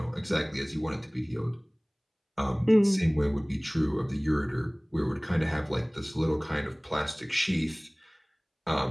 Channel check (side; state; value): both; identical; correlation 1.00